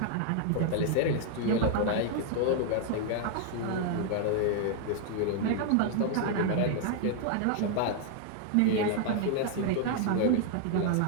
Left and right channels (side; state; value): both; different; correlation 0.00